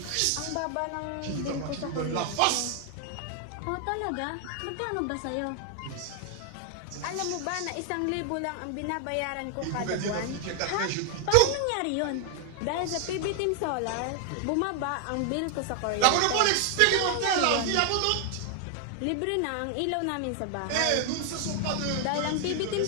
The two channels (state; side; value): different; both; correlation 0.00